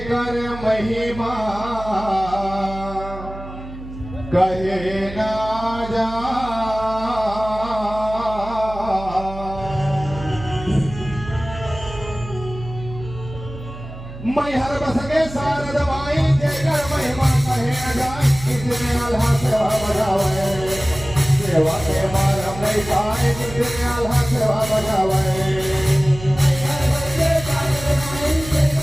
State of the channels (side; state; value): right; noise; hum, 12 dB below the sound